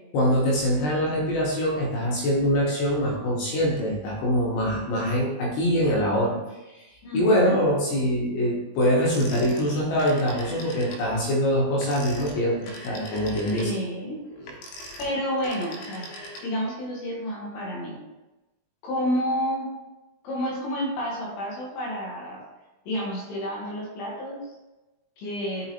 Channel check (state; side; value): late; right; 20 ms